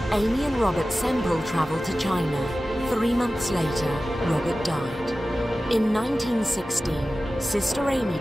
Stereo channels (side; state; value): both; normal; correlation 0.95